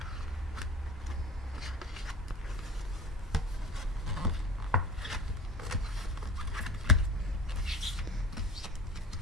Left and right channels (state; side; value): normal; both; correlation 0.39